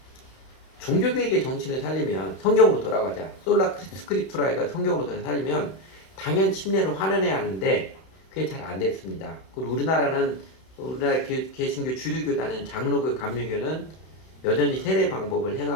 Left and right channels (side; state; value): right; late; 31 ms